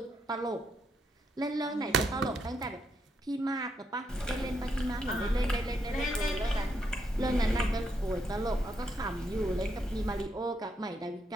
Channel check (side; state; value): both; normal; correlation 0.78